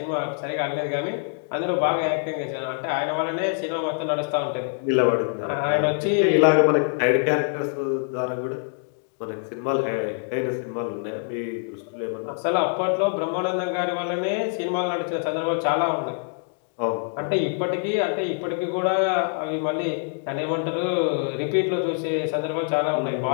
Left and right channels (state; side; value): silent; right; 62 dB below the other